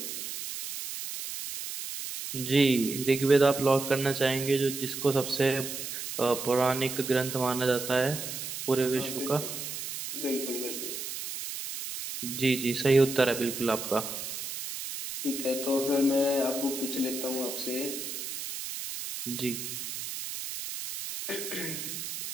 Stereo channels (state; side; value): noise; right; hiss, 7 dB below the sound